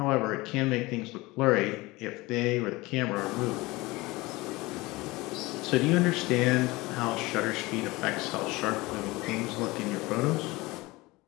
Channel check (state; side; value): quieter; right; 21.6 dB